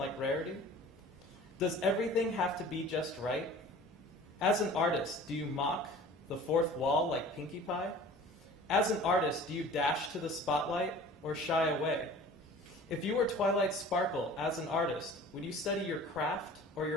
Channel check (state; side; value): normal; both; correlation 0.44